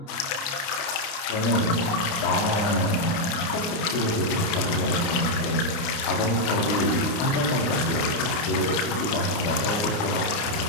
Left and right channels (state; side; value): late; right; 29 ms